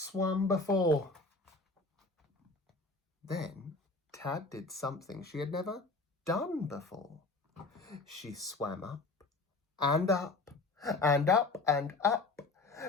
before. Then Tad did something she had never done before. She swam up and up and up and up.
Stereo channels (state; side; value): quieter; right; 3.5 dB